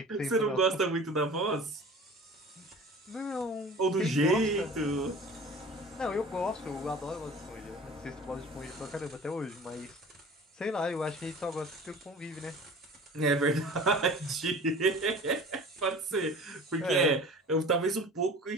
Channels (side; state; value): both; normal; correlation 0.42